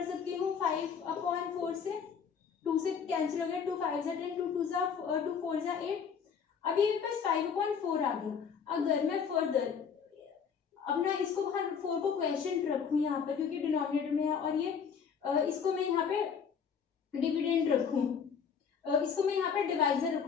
सकती हूँ 5 अपॉन 4 से, 2 से कैंसिल हो गया, 2 5 जा 10, 2 2 जा 2 4 जा 8। अभी मेरे पास 5 अपॉन 4 आ गया। अगर मैं फर्दर अपना इसको 4 को क्वेश्चन रखूँ यहाँ पर, क्योंकि डिनोमिनेटर में है, और ये इसको मैं यहाँ पे डिविडेंड रखूं, इसको मैं यहाँ पे डिवाइजर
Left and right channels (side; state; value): right; quieter; 6.8 dB